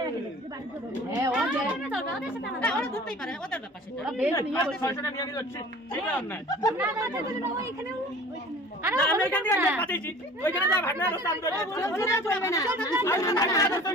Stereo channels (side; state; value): both; normal; correlation 0.45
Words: হ্যাঁ ও যে ওরা ধরতেই পারে ওদের ব্যাপার সেটা ওরা বেশ নিয়ে বসে 600 টাকা নিয়ে যাচ্ছি ঠিক আছে না আরে না আমি এখান থেকে পাঠিয়েছি ওইখানে যা ভাগনা রাস্তা আমি ধরে চলবে না